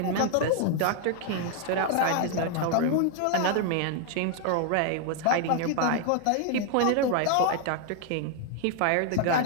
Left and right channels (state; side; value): different; both; correlation 0.00